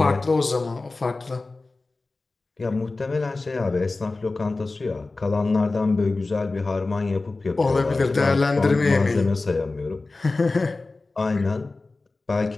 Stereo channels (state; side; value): quieter; right; 3.4 dB